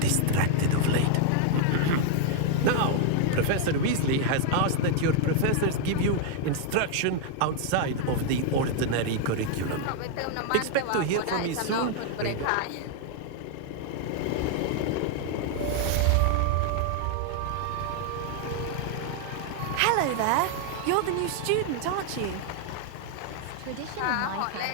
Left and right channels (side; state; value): both; different; correlation 0.00